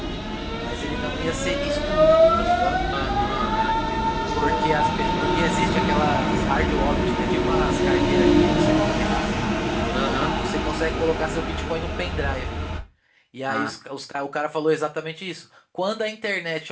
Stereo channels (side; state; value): both; identical; correlation 1.00